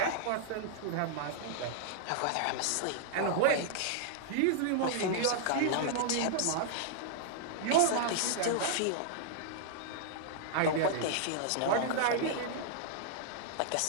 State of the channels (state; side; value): different; both; correlation -0.01